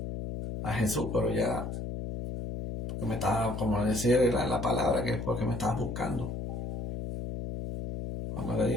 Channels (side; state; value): left; noise; hum, 5 dB below the sound